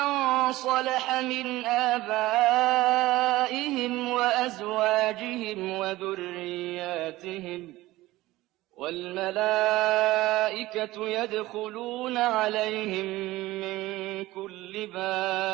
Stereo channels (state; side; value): quieter; left; 17.8 dB